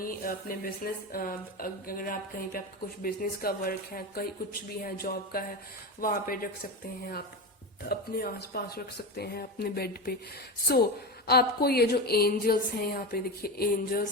अपने बिजनेस, अगर आप कहीं पे आपका कुछ बिजनेस का वर्क है, कहीं कुछ भी है, जॉब का है, वहां पे रख सकते हैं, आप अपने आसपास रख सकते हैं, अपने बेड पे। सो आपको ये जो एंजल्स हैं, यहाँ पे देखिए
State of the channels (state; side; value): normal; both; correlation 0.20